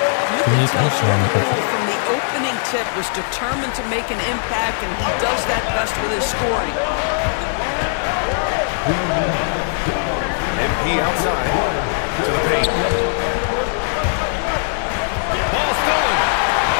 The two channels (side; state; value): right; silent; digital silence